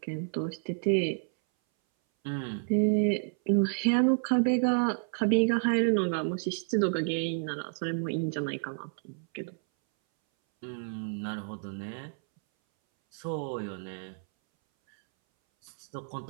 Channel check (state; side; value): silent; left; 58 dB below the other